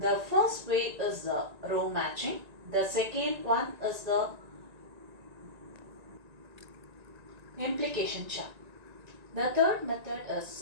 first way is the row matching. The second one is the implication chart. The third method is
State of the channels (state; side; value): late; left; 1.9 ms